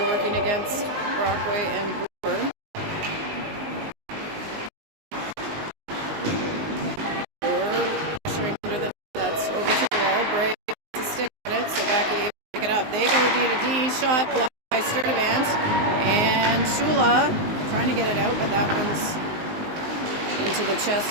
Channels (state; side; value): late; left; 19 ms